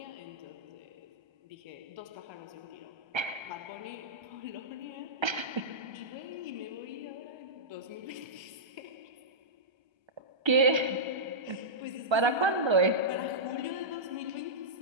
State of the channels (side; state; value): left; late; 1.3 ms